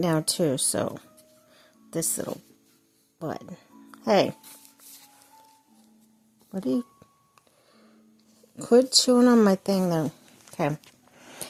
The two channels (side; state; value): both; identical; correlation 1.00